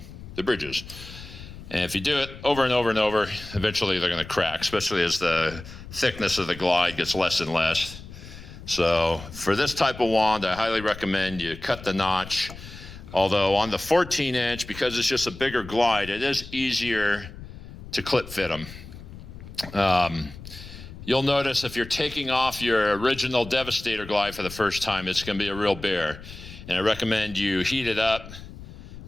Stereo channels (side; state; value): left; noise; rumble, 14 dB below the sound